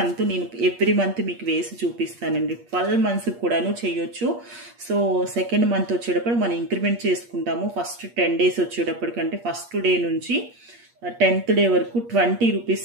నేను ఎవ్రీ మంత్ మీకు వేసి చూపిస్తానండి. 12 మంత్స్ కూడాను చేయొచ్చు. సో సెకండ్ మంత్ వచ్చేటప్పుడు మనం ఇంక్రిమెంట్ చేసుకుంటాము. ఫస్ట్ 10 డేస్ వచ్చేటప్పటికి అంటే ఫస్ట్ డే నుంచి 10th డే వరకు 20 రూపీస్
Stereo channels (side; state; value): left; late; 8.5 ms